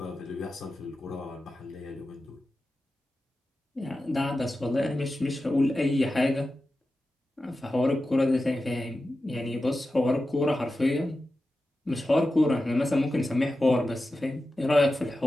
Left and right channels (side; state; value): both; normal; correlation 0.92